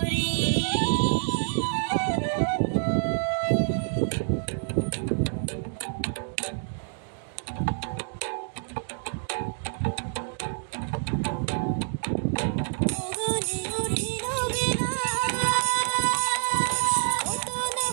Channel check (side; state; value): left; silent; 60 dB below the other